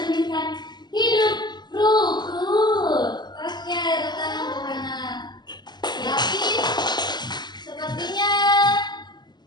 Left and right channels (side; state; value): right; late; 0.21 ms